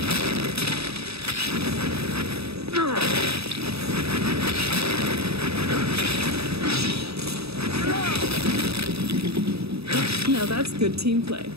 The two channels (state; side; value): late; left; 0.78 ms